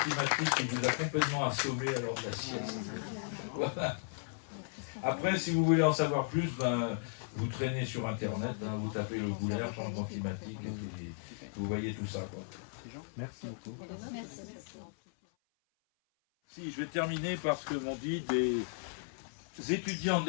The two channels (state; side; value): silent; right; 54 dB below the other